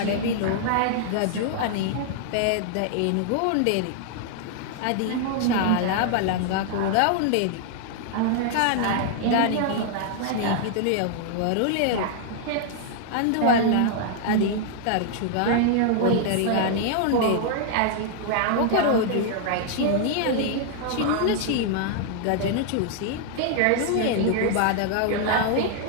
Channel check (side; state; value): both; different; correlation -0.01